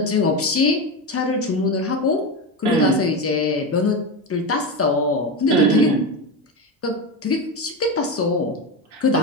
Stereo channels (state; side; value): normal; both; correlation 0.17